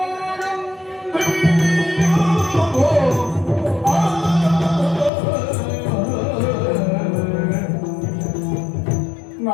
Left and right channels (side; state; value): right; drops out; at 5.1 s